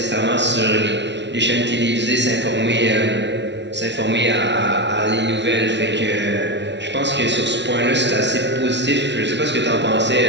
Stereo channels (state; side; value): late; left; 0.51 ms